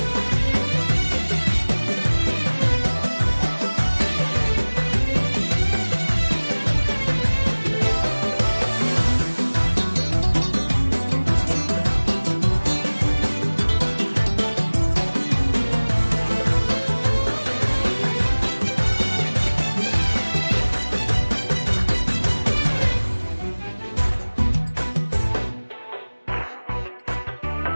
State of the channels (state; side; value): inverted; both; correlation -1.00